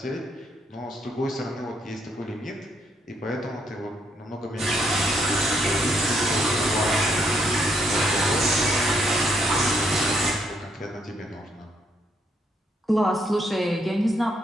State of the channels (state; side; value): normal; both; correlation 0.74